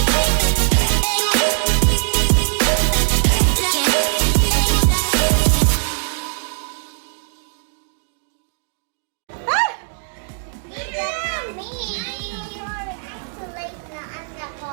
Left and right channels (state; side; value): silent; left; 61 dB below the other